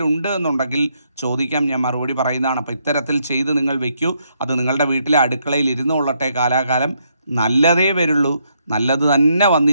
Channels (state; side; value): inverted; both; correlation -0.75